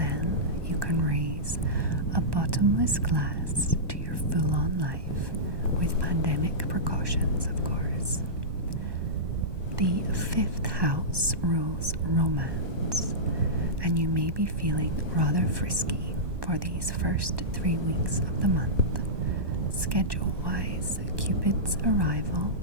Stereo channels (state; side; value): late; left; 1.1 ms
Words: you can raise a bottomless glass to your full-on life with pandemic precautions, of course. The 5th house rules romance, and you may be feeling rather frisky for these first 3 weeks of the month. Schedule-wise, Cupid's arrival